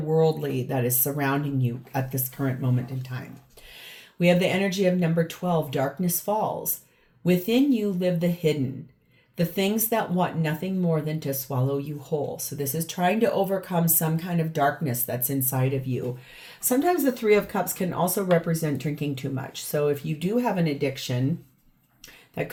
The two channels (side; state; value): both; identical; correlation 1.00